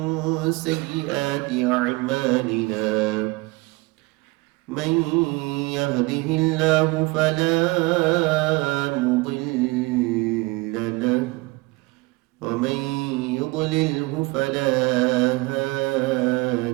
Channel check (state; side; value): quieter; left; 23.9 dB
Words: سيئات أعمالنا من يهده الله فلا مضل له ومن يضلله فلا